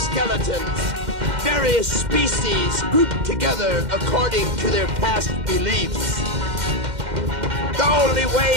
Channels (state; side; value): late; left; 2.1 ms